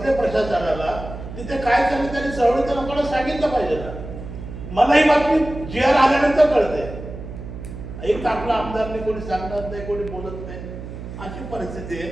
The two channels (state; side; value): noise; right; hum, 11 dB below the sound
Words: प्रशासनाला, तिथे काय चाललं त्यांनी चळवळीच्या लोकांना सांगितलं पाहिजे ना. मला ही बातमी GR आल्यानंतर कळते. एक आपला आमदारने कोणी सांगणार नाही, कोणी बोलत नाही, अशी परिस्थिती आहे.